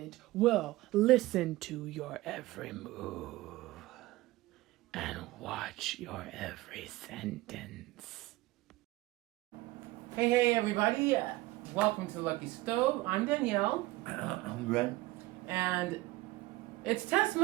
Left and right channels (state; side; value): quieter; left; 19.0 dB